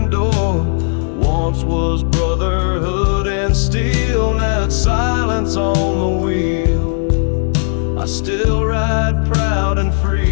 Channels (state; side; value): silent; right; digital silence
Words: door. Once was brotherhood and steel, now it's silence on the wheel. I still ride proud and